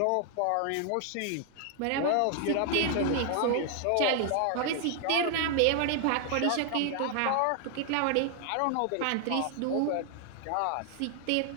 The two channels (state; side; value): different; both; correlation 0.00